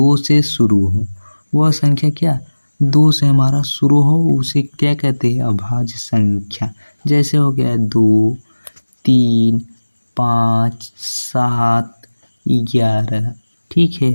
से शुरू हो वह संख्या, क्या 2 से हमारा शुरू हो उसे क्या कहते हैं, अभाज्य संख्या। जैसे हो गया 2, 3, 5, 7, 11, ठीक है।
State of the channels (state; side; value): inverted; both; correlation -1.00